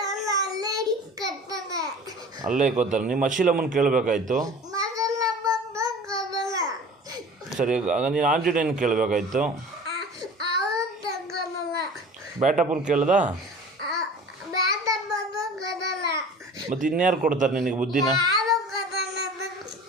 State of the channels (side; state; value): both; normal; correlation 0.42